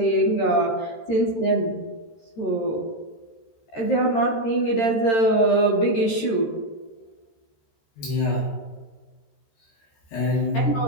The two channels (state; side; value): late; right; 13 ms